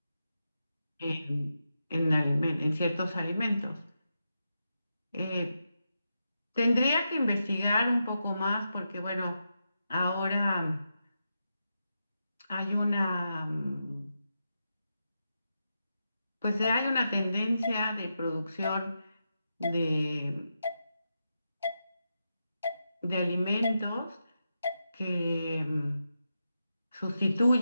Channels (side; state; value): both; inverted; correlation -0.87